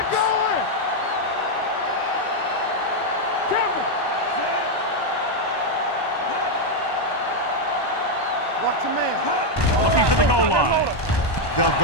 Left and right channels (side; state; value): right; late; 1.1 ms